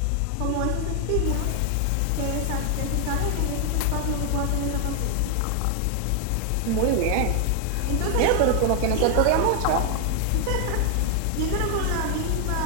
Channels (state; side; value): different; both; correlation 0.00